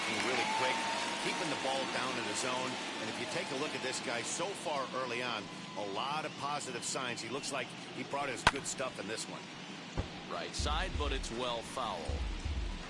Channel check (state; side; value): identical; both; correlation 1.00